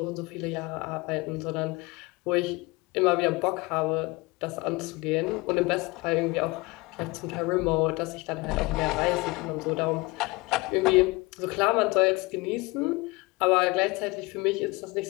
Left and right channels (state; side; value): quieter; right; 24.2 dB